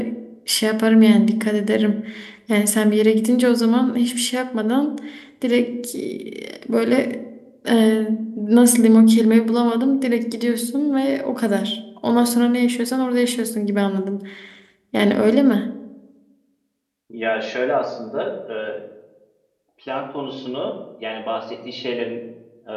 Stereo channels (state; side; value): identical; both; correlation 1.00